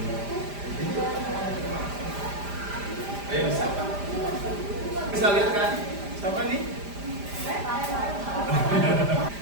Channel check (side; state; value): left; late; 5.0 ms